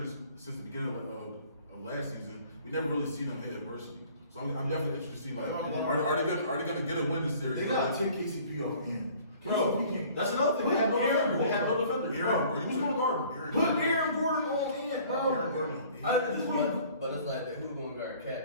since the beginning of last season, we never really seen them hit adversity. So I'm definitely interested to see, like, are they gonna get a win this series? They gotta take KCP off in. Bro, that's another thing. They have no defender. They have no defender. Aaron, Who's gonna guard him? Put Aaron Gordon on in, bro. Aaron Gordon. At this point, But it's like who gonna guard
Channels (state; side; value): inverted; both; correlation -0.52